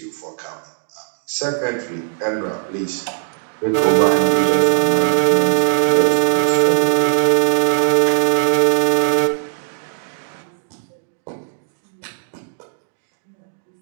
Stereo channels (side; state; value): left; silent; digital silence